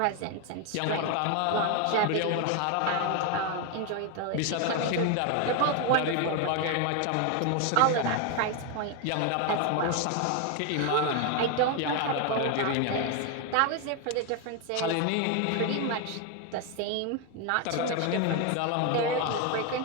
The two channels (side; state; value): both; different; correlation 0.01